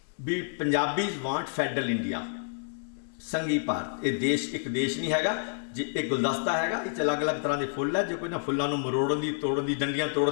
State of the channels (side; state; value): right; silent; digital silence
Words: ਵੀ ਪੰਜਾਬੀਜ਼ ਵਾਂਟ ਫੈਡਰਲ ਇੰਡੀਆ, ਸੰਘੀ ਭਾਰਤ। ਇਹ ਦੇਸ਼ ਇੱਕ ਦੇਸ਼ ਨਹੀਂ ਹੈਗਾ, ਇਹ ਗੁਲਦਸਤਾ ਹੈਗਾ, ਇਹ 'ਚ ਅਲੱਗ-ਅਲੱਗ ਤਰ੍ਹਾਂ ਦੇ ਫੁੱਲ ਹੈ। ਜੇ ਕੋਈ ਨਾ ਫੁੱਲਾਂ ਨੂੰ ਮਰੋੜਨ ਦੀ, ਤੋੜਨ ਦੀ, ਡੰਡੀਆਂ